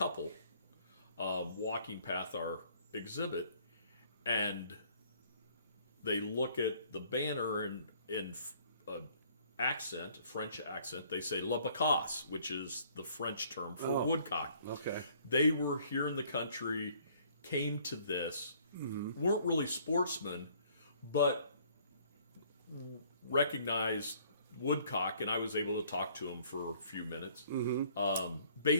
walking past our exhibit, and they look at the banner in French accent. They say "la bacasse," which is the French term for woodcock. Okay. They were here in the country, came to this, weren't really sportsmen, but recognized woodcock, and I was able to talk to them for a few minutes,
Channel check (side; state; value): both; inverted; correlation -0.59